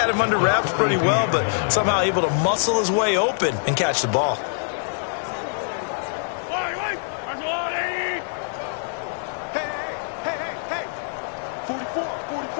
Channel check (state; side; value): silent; right; digital silence